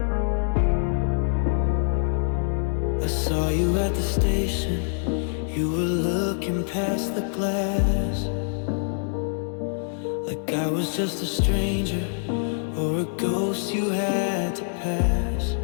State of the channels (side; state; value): right; silent; digital silence